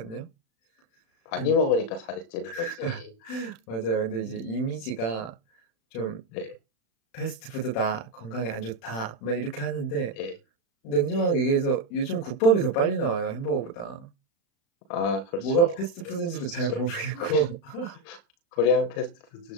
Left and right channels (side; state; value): right; late; 35 ms